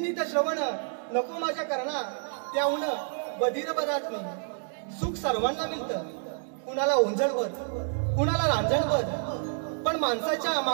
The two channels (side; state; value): left; silent; 59 dB below the other